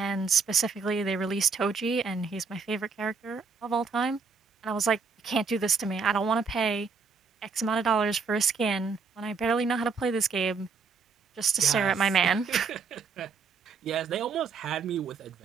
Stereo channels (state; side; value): quieter; left; 5.1 dB